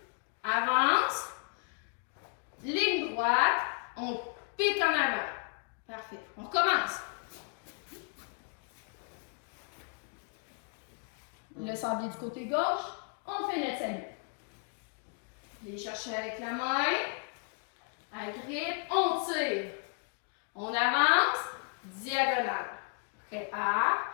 Avance. Ligne droite. On pique en avant. Parfait. On recommence. Le sablier du côté gauche. On fait notre salut. Viens chercher avec la main. Agrippe. On tire. On avance. Diagonale. Prépare.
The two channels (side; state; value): right; quieter; 39.9 dB